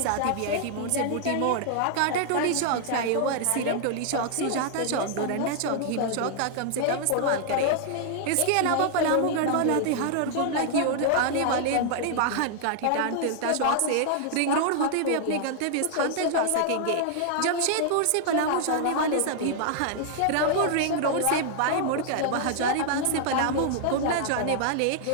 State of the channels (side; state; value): both; different; correlation -0.01